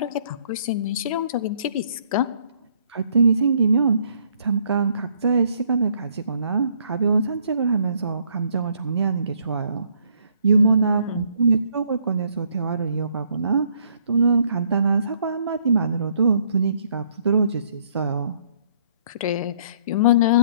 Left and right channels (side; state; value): both; inverted; correlation -0.65